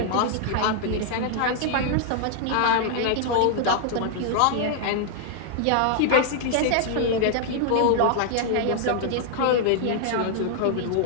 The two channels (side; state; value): both; different; correlation 0.00